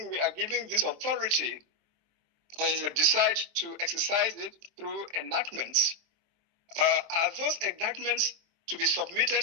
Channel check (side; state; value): left; late; 23 ms